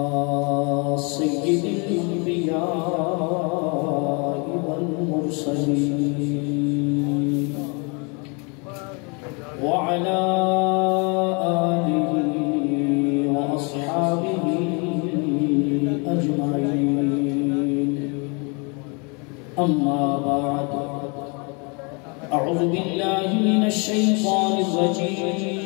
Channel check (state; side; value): quieter; right; 32.9 dB